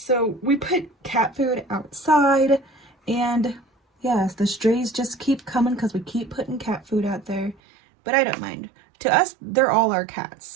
we put cat food outside, and yes, the strays just keep coming because we keep putting cat food out there. But I don't mind. To us, they're all our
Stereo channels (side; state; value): left; drops out; at 7.6 s